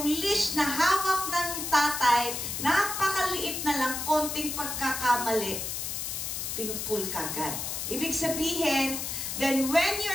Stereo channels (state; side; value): noise; left; hiss, 4 dB below the sound